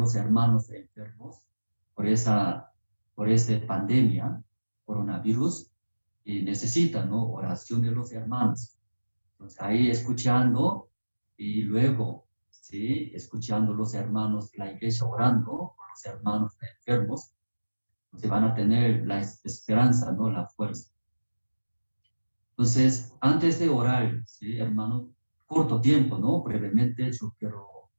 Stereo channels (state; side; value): inverted; both; correlation -1.00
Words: hermanos enfermos por esta pandemia, coronavirus, y necesitan, ¿no?, oración de los hermanos. Entonces ahí escuchando, y luego, ¿sí?, escuchando los hermanos de la iglesia orando por los hermanos enfermos, entonces van a tener la esperanza, ¿no?, la fuerza. Entonces, antes de orar, ¿sí?, hermanos, corto tiempo, ¿no? Brevemente yo quiero